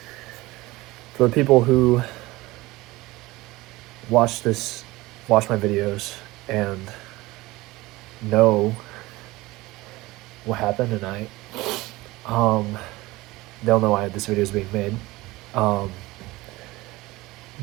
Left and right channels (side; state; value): left; quieter; 19.9 dB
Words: For the people who watch my videos and know what happened tonight, they'll know why this video is being made.